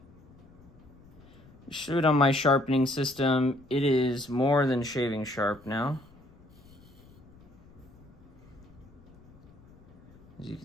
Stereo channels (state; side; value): noise; left; rumble, 24 dB below the sound